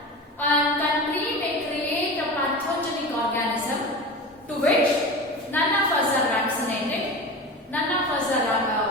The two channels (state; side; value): normal; both; correlation 0.30